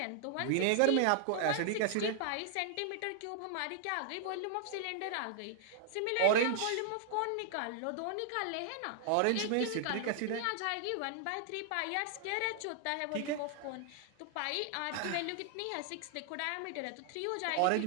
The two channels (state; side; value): different; both; correlation 0.00